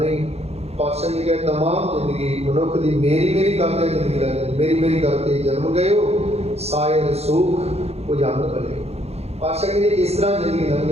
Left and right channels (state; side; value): late; left; 0.30 ms